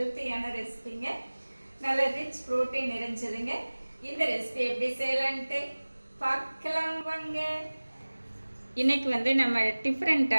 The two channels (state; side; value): inverted; both; correlation -1.00